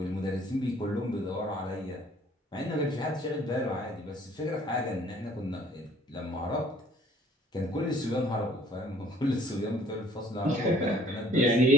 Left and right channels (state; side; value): normal; both; correlation 0.55